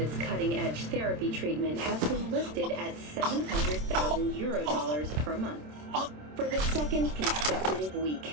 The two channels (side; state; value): left; late; 27 ms